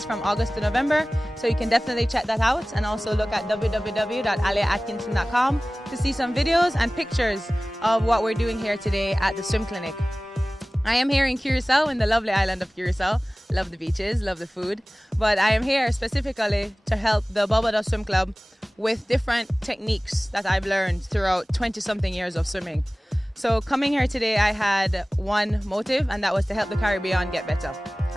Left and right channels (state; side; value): normal; both; correlation 0.98